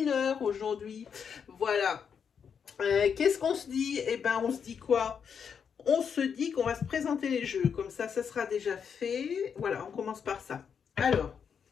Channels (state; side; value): quieter; right; 7.0 dB